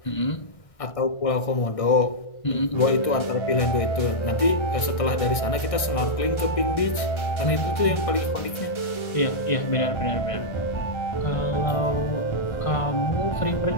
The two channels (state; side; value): late; right; 1.6 ms